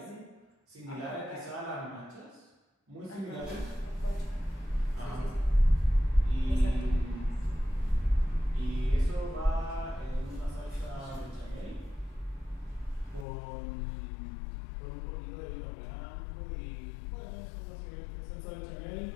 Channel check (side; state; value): right; drops out; at 13.2 s